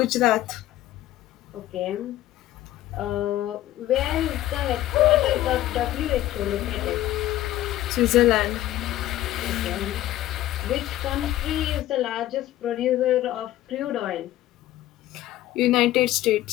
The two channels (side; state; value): right; quieter; 14.3 dB